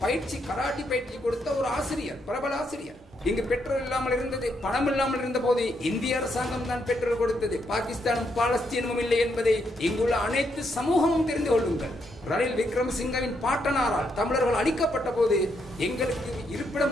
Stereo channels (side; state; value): both; normal; correlation 0.78